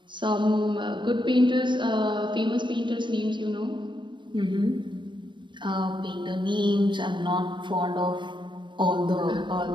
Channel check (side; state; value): left; late; 0.23 ms